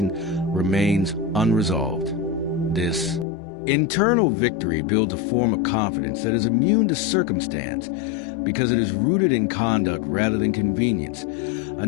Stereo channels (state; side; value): drops out; right; at 3.2 s